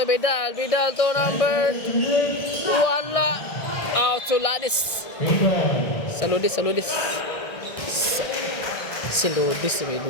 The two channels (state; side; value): late; right; 1.6 ms